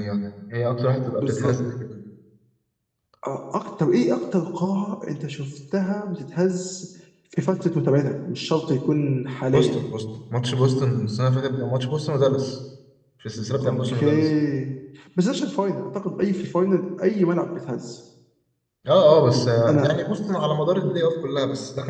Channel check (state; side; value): identical; both; correlation 1.00